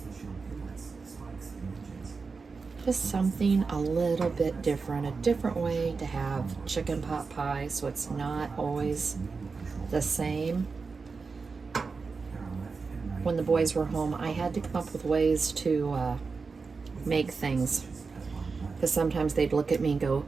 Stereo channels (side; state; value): left; quieter; 4.6 dB